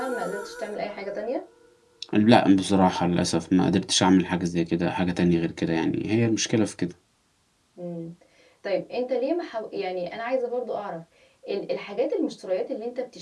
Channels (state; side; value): identical; both; correlation 1.00